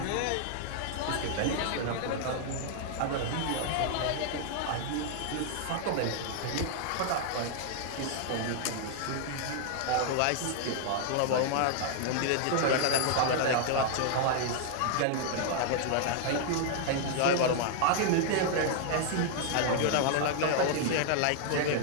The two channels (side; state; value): both; different; correlation -0.01